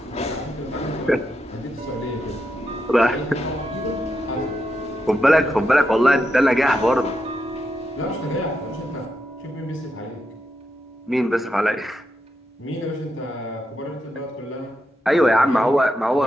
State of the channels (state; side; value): normal; both; correlation 0.84